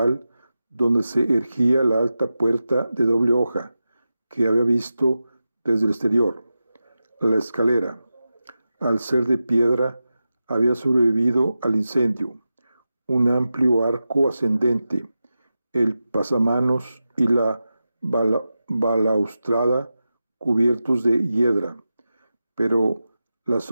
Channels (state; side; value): inverted; both; correlation -0.92